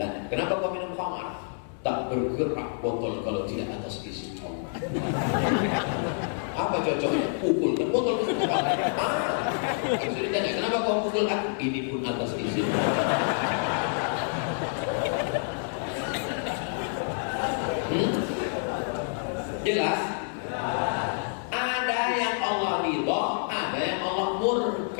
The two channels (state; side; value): silent; right; digital silence